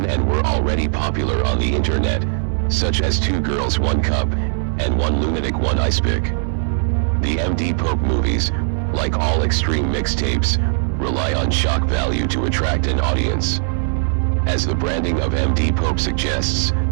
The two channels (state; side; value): silent; left; 62 dB below the other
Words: and were already popular on the internet, such as 2 Girls 1 Cup, and 1 Lunatic 1 Ice Pick. The MDPOPE movies, like all extreme mixtapes, rely on shock value to attract an audience. As the branding of MDPOPE suggests,